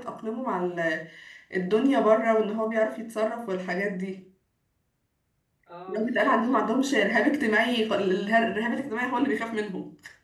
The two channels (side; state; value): both; identical; correlation 1.00